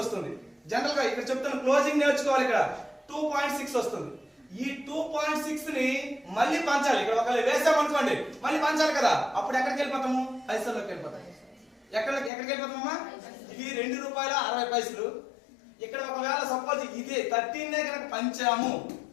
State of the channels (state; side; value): drops out; right; at 12.3 s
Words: వస్తుంది. జనరల్ గా ఇక్కడ చెప్తాను క్లోజింగ్ నేర్చుకోవాలి. ఇక్కడ 2.6 వస్తుంది. ఈ 2.6 ని మళ్ళీ పంచాలి. ఇక్కడ ఒకవేళ వేసామనుకోండి మళ్ళీ పంచాలి కదా, అప్పుడు ఎక్కడికి వెళ్ళిపోతాము? పైసల్లోకి వెళ్ళిపోతాం. ఎక్కడికి వెళ్ళిపోతామమ్మా? ఇది ₹2.60. ఇక్కడ ఒకవేళ సపోజ్ ఇది 13 కనుక పంచాము,